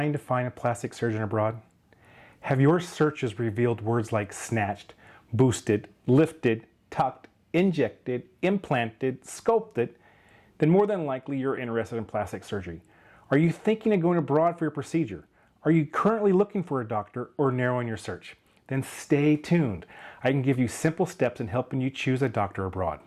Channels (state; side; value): identical; both; correlation 1.00